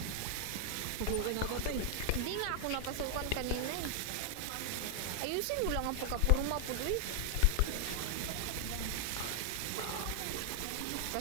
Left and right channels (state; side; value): different; both; correlation 0.00